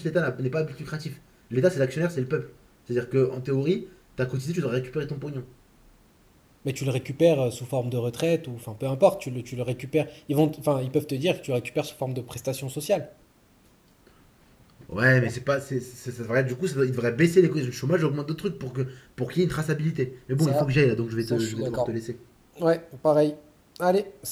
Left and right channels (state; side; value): identical; both; correlation 1.00